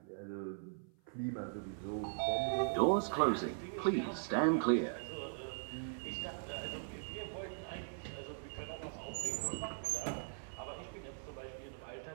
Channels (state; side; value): silent; left; 51 dB below the other